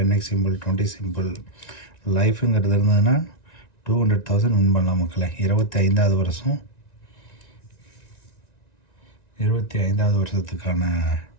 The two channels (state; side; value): late; right; 1.9 ms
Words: simple, 20 simple. லைஃபுங்கிறது இருந்ததுன்னா 200,000 வின் பண்ணலாம் மக்களை. 25வது வருஷம், 25வது வருஷத்துக்கான